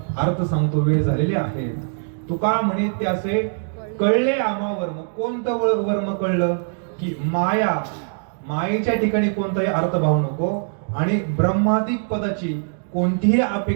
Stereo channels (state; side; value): silent; left; digital silence